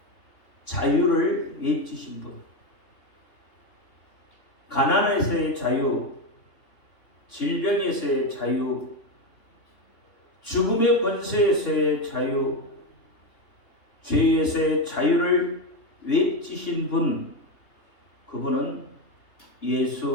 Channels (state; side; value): late; right; 3.2 ms